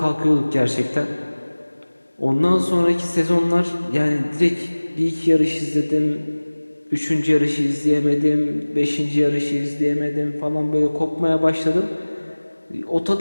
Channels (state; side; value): inverted; both; correlation -1.00